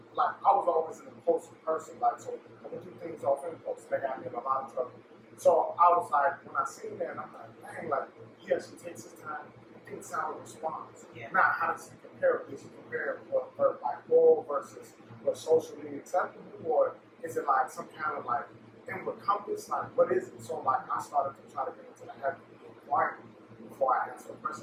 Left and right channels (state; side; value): identical; both; correlation 1.00